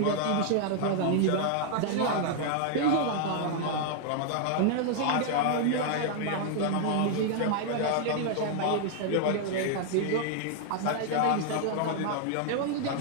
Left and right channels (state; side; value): different; both; correlation 0.00